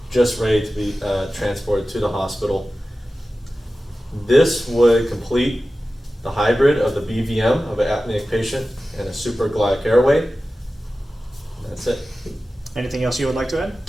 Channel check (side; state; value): both; normal; correlation 0.95